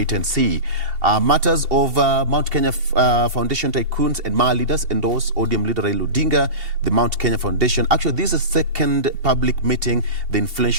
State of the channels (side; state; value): left; late; 2.7 ms